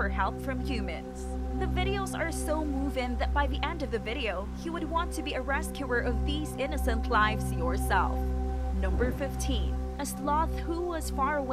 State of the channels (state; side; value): identical; both; correlation 1.00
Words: help from humans. The videos are so moving that by the end of the video, you would want to be a rescuer of these innocent lives yourself. Number 15. A sloth who was far